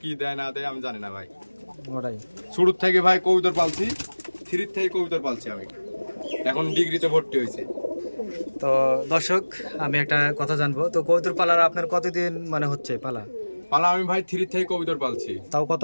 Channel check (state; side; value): inverted; both; correlation -1.00